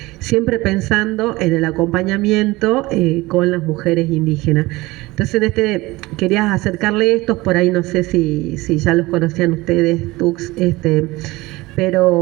Siempre pensando en el acompañamiento con las mujeres indígenas. Entonces, querías acercarle estos, por ahí no sé si ya los conocían ustedes, Tux,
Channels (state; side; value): quieter; left; 20.6 dB